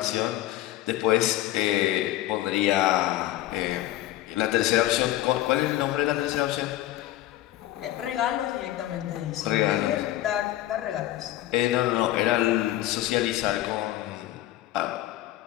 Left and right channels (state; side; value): quieter; right; 14.9 dB